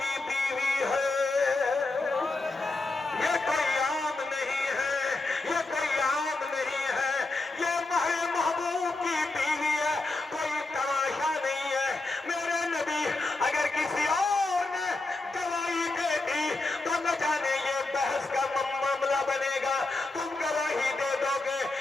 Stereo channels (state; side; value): quieter; right; 3.2 dB